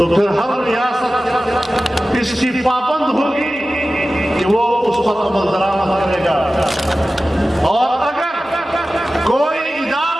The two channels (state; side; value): normal; both; correlation 0.95